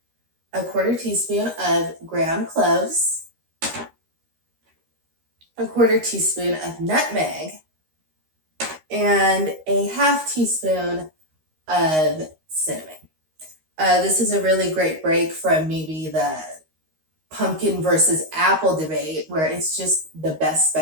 a 1/4 teaspoon of ground cloves, a 1/4 teaspoon of nutmeg, and a 1/2 teaspoon of cinnamon. This is a really great break from maybe the pumpkin versus apple debate, where it's just the best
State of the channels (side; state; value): left; late; 13 ms